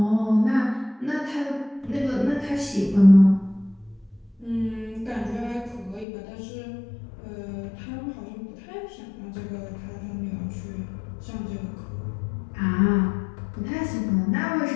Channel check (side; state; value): right; drops out; at 6.1 s